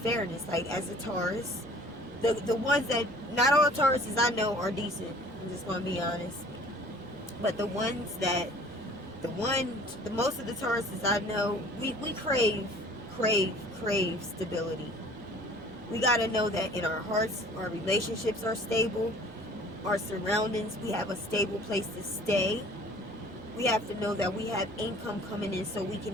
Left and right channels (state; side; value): normal; both; correlation 0.51